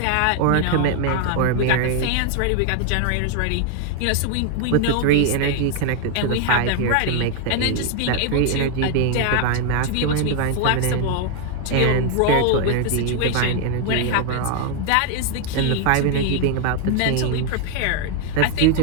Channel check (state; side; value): different; both; correlation 0.01